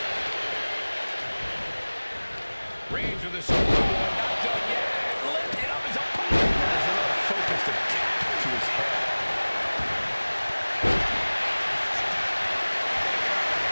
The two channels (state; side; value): inverted; both; correlation -1.00